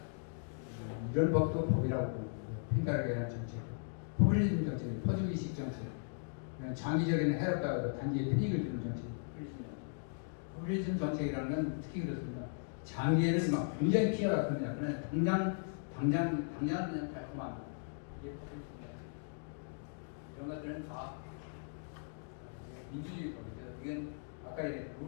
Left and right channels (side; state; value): right; silent; digital silence